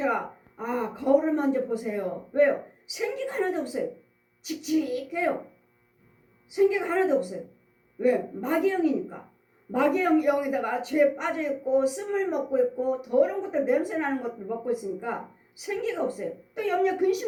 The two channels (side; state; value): both; identical; correlation 1.00